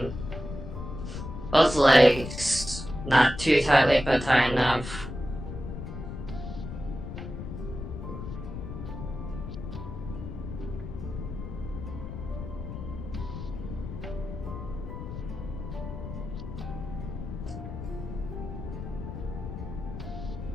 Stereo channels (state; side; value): noise; left; rumble, 8 dB below the sound